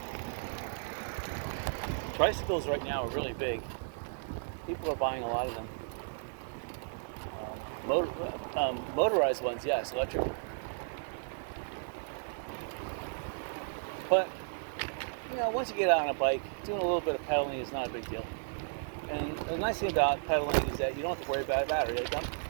Tricycles right now are really big. People are buying a lot of them. Motorized ones, yes, electric. But you know, once you get out on a bike, doing a little bit of pedaling is not a big deal. And the nice thing about pedaling is that you don't have to worry about a battery. Like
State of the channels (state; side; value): silent; left; 55 dB below the other